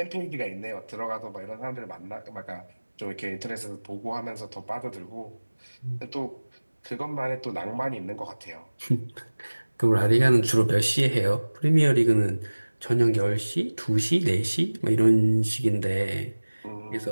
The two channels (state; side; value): inverted; both; correlation -1.00